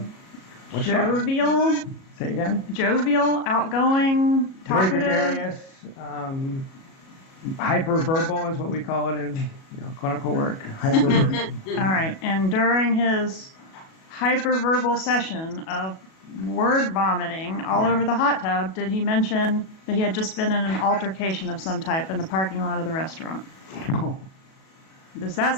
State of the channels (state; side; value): late; right; 37 ms